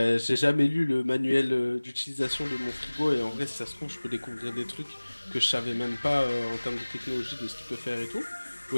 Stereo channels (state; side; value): inverted; both; correlation -1.00